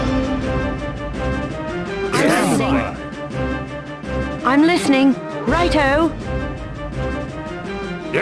I'm listening. Righto.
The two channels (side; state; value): both; identical; correlation 1.00